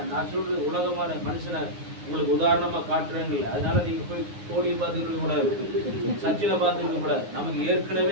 நான் சொல்றது உலகமான மனுஷனை உங்களுக்கு உதாரணமா காட்டுறேங்கல்ல. அதனால நீங்க போய் கோலியை பார்த்துக்கிட்டு கூடாது, சச்சினை பார்த்துக்கிட்டு கூடாது. நமக்கு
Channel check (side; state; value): left; late; 9.6 ms